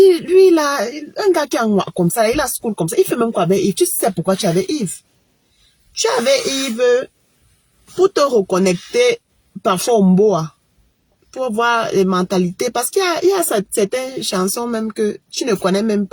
lui, il a un gars qui est comme ça, il a school comme ça, il fait même quoi avec Yves? Tu sais pourquoi tu avais Yves? Tu avais Yves pour te reconnecter parfois au Mboa, pour voir les mentalités, parce qu'il y a certaines chansons même que tu ne connais même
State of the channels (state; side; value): identical; both; correlation 1.00